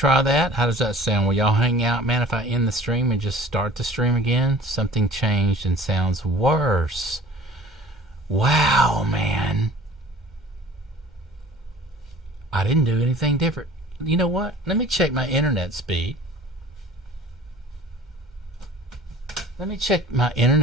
that? How does that sound? Will y'all hang out, man, if I end the stream and just start the stream again? Something changed and sounds worse. Wow, man. I didn't do anything different. You know what? Let me check my internet speed. Let me check my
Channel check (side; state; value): both; normal; correlation 0.47